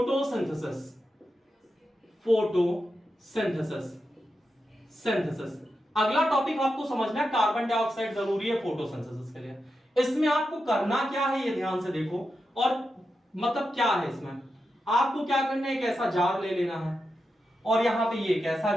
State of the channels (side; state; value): both; normal; correlation 0.88